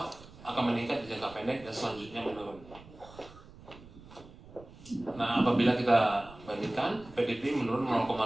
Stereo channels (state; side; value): noise; right; rumble, 20 dB below the sound